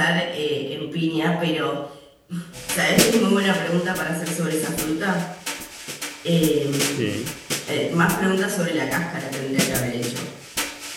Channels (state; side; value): identical; both; correlation 1.00